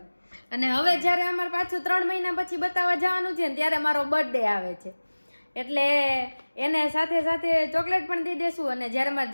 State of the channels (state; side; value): inverted; both; correlation -1.00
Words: અને હવે જયારે અમારે પાછું 3 મહિના પછી બતાવવા જવાનું છે ને ત્યારે મારો બર્થડે આવે છે એટલે એને સાથે સાથે ચોકલેટ પણ દઈ દેશું. અને જયારે મારે